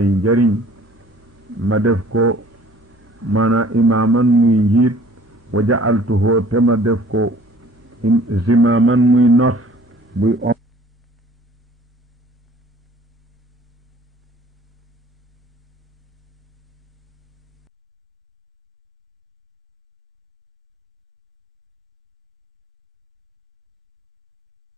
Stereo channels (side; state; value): both; normal; correlation 0.52